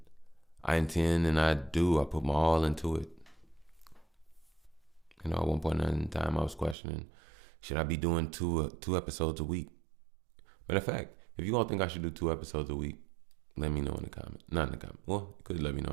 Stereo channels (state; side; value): drops out; left; at 6.8 s